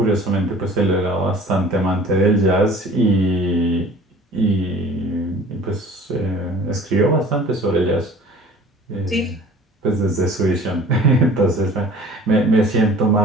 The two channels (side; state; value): both; normal; correlation 0.47